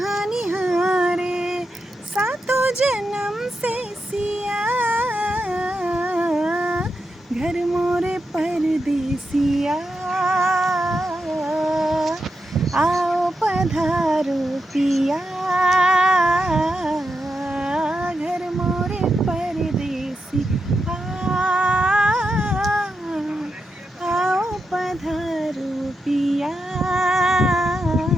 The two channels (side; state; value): both; normal; correlation 0.87